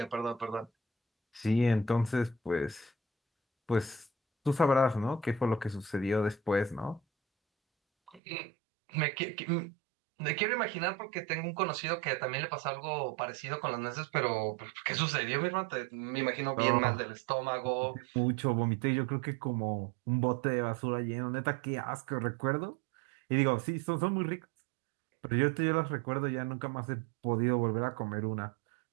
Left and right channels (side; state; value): left; drops out; at 8.2 s